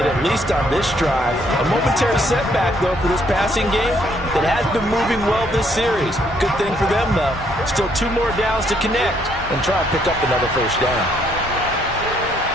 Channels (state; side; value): normal; both; correlation 0.69